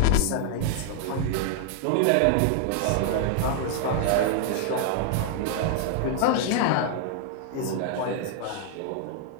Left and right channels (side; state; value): both; different; correlation 0.00